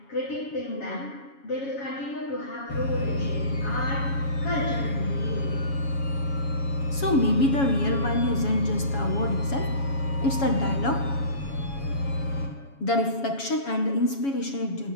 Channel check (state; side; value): late; right; 7.2 ms